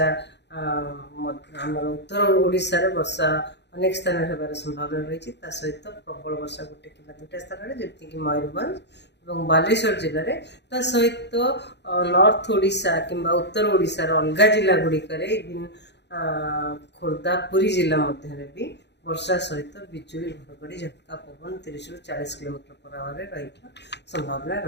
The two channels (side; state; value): right; late; 0.50 ms